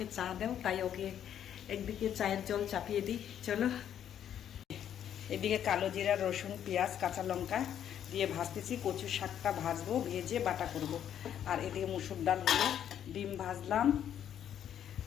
চা দাও, তাই ওকে একদিকে চায়ের জল চাপিয়ে দিই। চলো, এদিকে কালো জিরা, রসুন, পেঁয়াজ, কাঁচা লঙ্কা দিয়ে ভাজতেছি। কচু শাকটা ভাজবো, ভেজে বাটা করব। আর এদিকে মুসুর ডাল হলো, ডিম ভাজলাম।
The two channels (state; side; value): quieter; right; 9.8 dB